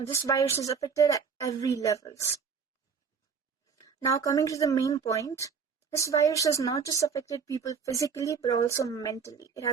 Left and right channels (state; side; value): quieter; left; 6.0 dB